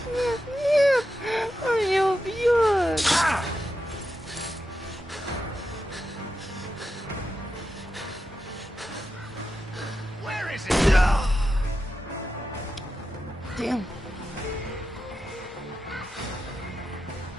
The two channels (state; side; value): normal; both; correlation 0.89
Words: нет, нет! Он меня убьет! Where is he? Damn.